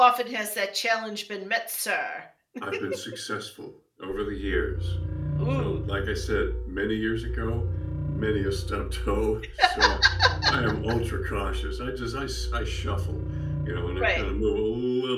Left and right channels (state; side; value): identical; both; correlation 1.00